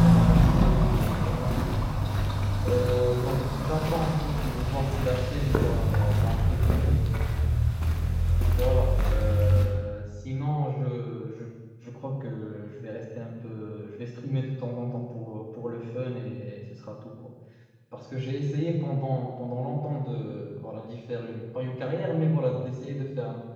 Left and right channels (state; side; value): identical; both; correlation 1.00